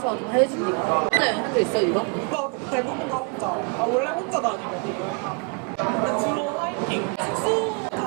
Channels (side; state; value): left; quieter; 34.2 dB